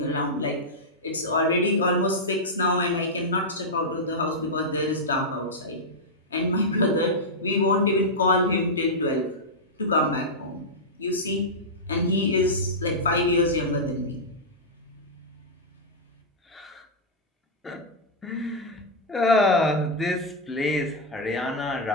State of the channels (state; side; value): normal; both; correlation -0.07